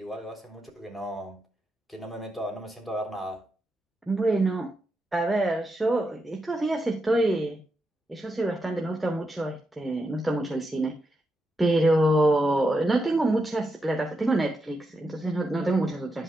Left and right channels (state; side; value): normal; both; correlation 0.85